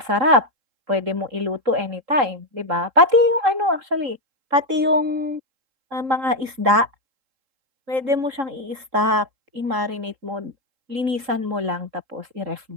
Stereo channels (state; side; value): late; left; 3.7 ms